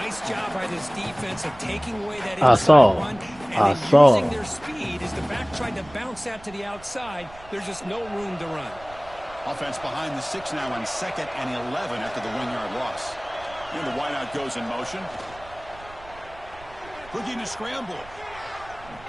job by this defense of taking away that inside run and using their speed as the back tried to bounce that to the outside. There's just no room to run. Offense behind the 6 now on 2nd and 11 after the 1-yard loss. And the wideout goes in motion. Looking to scramble.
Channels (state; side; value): noise; right; rumble, 21 dB below the sound